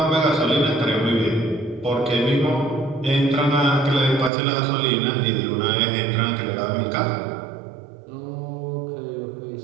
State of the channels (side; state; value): left; drops out; at 4.3 s